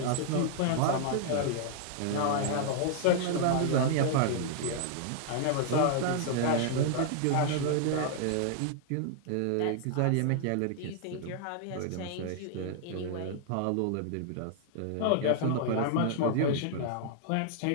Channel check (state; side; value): different; both; correlation -0.01